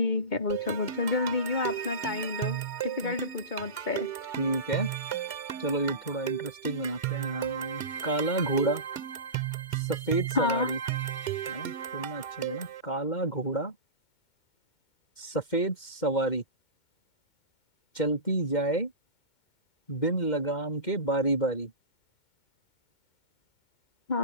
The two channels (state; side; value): late; right; 2.2 ms